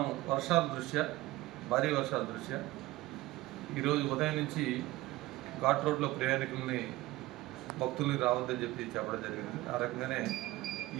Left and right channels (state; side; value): quieter; left; 18.2 dB